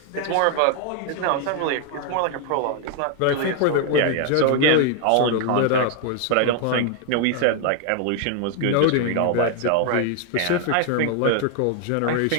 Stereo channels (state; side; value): different; both; correlation 0.00